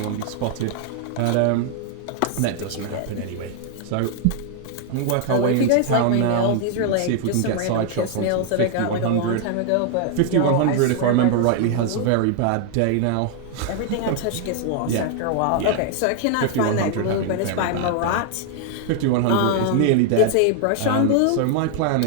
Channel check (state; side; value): different; both; correlation 0.00